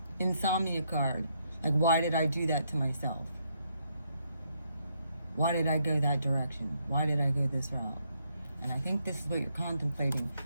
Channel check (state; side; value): inverted; both; correlation -0.75